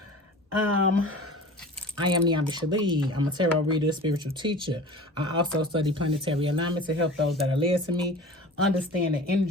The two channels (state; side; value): normal; both; correlation 0.39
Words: I am Niambi Shalee. I'm a tarot reader, spiritual teacher. I also study planetary alignment to help those that are led to me understand the